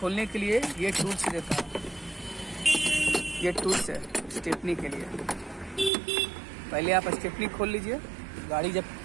के लिए ये टूल्स देता है। ये टूल्स है स्टेपनी के लिए। पहले आप स्टेपनी खोल लीजिए। गाड़ी जब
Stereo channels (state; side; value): drops out; left; at 5.9 s